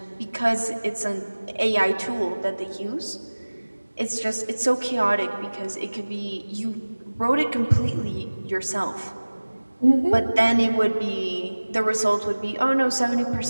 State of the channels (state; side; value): inverted; both; correlation -1.00